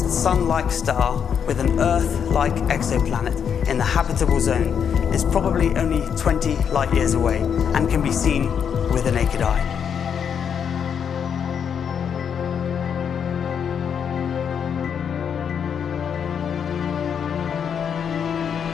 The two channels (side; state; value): right; quieter; 7.6 dB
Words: Sun-like star with an Earth-like exoplanet in the habitable zone is probably only 20 light years away and can be seen with the naked eye.